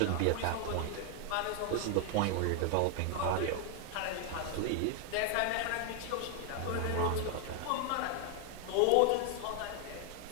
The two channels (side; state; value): both; different; correlation 0.00